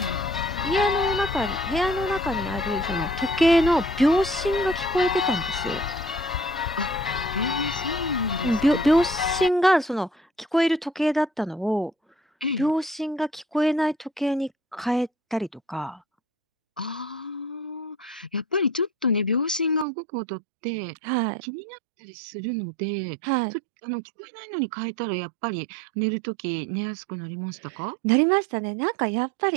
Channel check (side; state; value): left; drops out; at 19.9 s